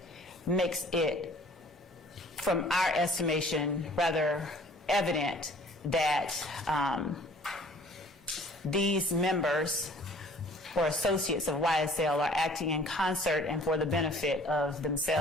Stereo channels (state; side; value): normal; both; correlation 0.52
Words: makes it, from our estimation, rather evident that these members or associates of YSL are acting in concert and for the benefit of